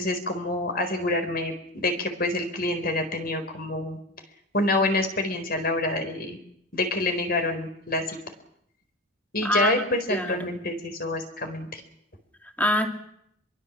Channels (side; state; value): both; normal; correlation 0.26